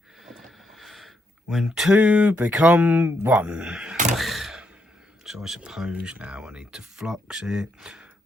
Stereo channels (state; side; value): normal; both; correlation 0.78